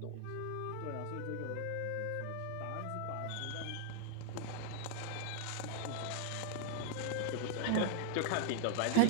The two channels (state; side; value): different; both; correlation 0.00